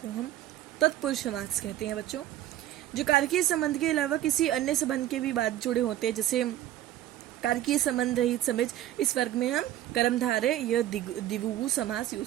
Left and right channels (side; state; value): left; quieter; 13.0 dB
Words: हम तत्पुरुष समास कहते हैं बच्चों। जो कारकीय संबंध के अलावा किसी अन्य संबंध के भी बाद जुड़े होते हैं, जैसे कारकीय संबंध रहित समझ, इस वर्ग में हम कर्मधारय या द्विगु समास